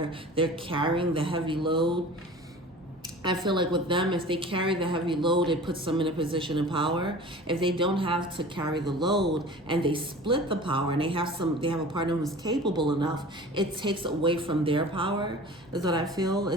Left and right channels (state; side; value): normal; both; correlation 0.40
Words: they're carrying the heavy load. I feel like with them, if they carry the heavy load, it puts them in a position of power. If they don't have to carry the load and they split the power and they have a partner who's capable enough, it takes away from their power, is what I feel.